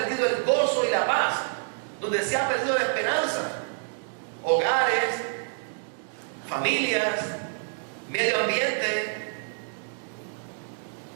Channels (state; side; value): silent; left; digital silence